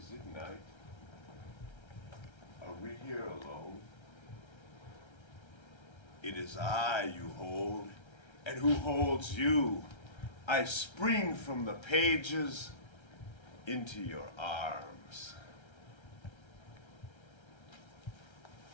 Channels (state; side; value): late; right; 1.3 ms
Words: it night? Are we here alone? It is I you hold, and who holds you? I spring from the pages into your arms.